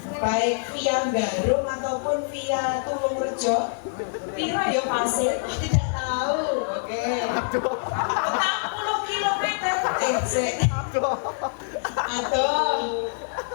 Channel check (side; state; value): right; silent; digital silence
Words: Baik via Garung ataupun via Tulungrejo? Piro ya pasir? Tidak tahu. Oke. 40 kilometer.